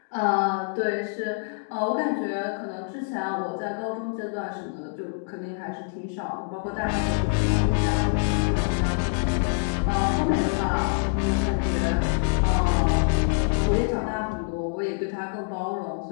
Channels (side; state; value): right; silent; digital silence